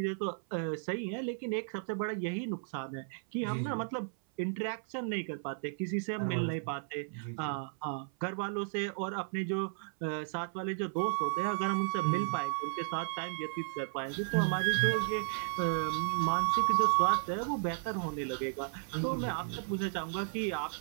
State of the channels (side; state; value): left; silent; 55 dB below the other